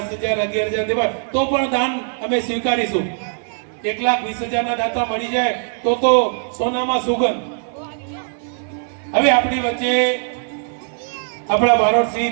11,000 દેવા, તો પણ દાન અમે સ્વીકારીશું. 1,20,000 ના દાતા મળી જાય તો સોનામાં સુગંધ. હવે આપણી વચ્ચે આપણા બારોટશ્રી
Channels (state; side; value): silent; left; digital silence